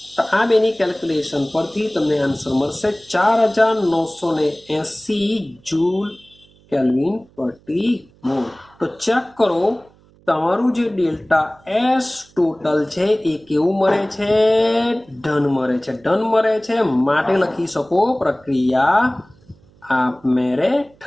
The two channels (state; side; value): noise; right; hum, 29 dB below the sound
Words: તો આ બેની કેલ્ક્યુલેશન પરથી તમને આન્સર મળશે 4980 જૂલ કેલ્વિન પ્રતિ મોલ. તો ચેક કરો તમારું જે ડેલ્ટા એસ ટોટલ છે એ કેવું મળે છે? ધન મળે છે. ધન મળે છે માટે લખી શકો પ્રક્રિયા આપમેળે